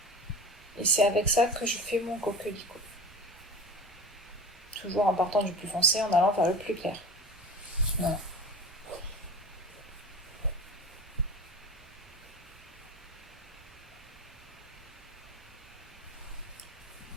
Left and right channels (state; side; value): normal; both; correlation 0.35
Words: Et c'est avec ça que je fais mon coquelicot. Toujours en partant du plus foncé, en allant vers le plus clair. Voilà.